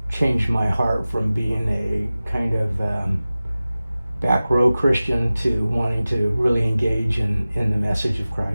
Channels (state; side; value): inverted; both; correlation -0.97